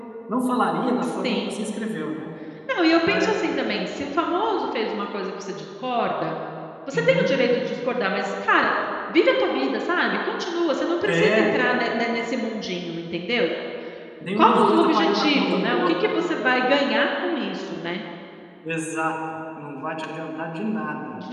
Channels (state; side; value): identical; both; correlation 1.00